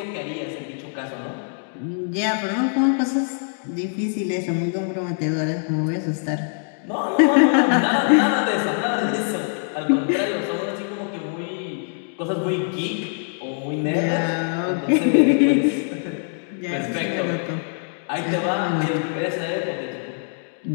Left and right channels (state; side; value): silent; right; 63 dB below the other